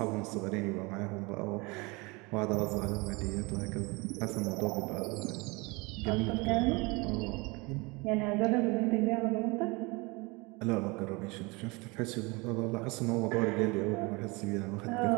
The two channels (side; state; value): left; quieter; 26.2 dB